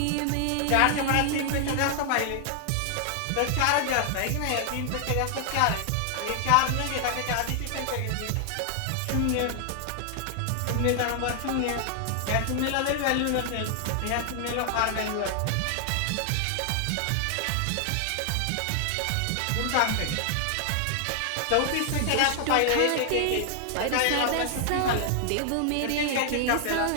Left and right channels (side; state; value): both; different; correlation 0.00